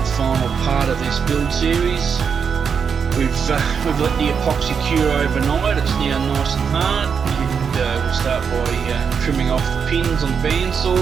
final part of this build series. We've let the epoxy cure overnight. It's now nice and hard, and we'll start by trimming off the pins on the bandsaw,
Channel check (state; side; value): quieter; left; 6.5 dB